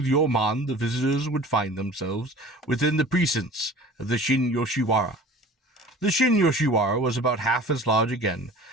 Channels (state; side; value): normal; both; correlation 0.43